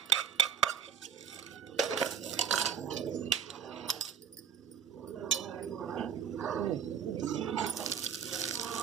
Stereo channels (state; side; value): quieter; left; 7.8 dB